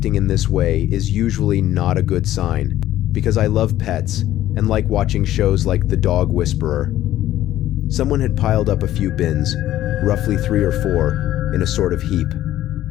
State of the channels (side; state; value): right; quieter; 13.6 dB